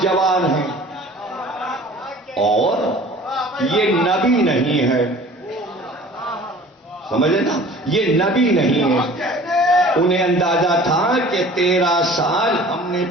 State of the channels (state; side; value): normal; both; correlation 0.46